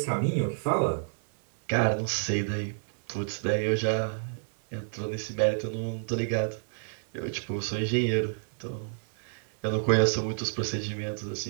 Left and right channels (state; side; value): silent; left; digital silence